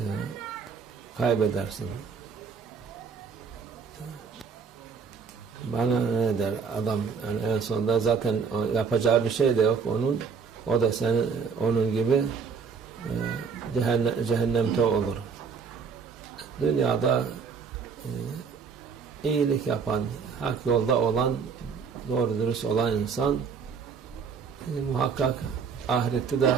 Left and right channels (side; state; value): left; quieter; 5.9 dB